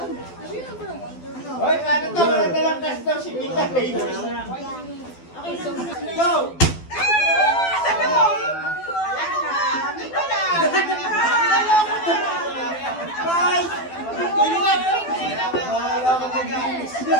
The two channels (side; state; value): right; late; 12 ms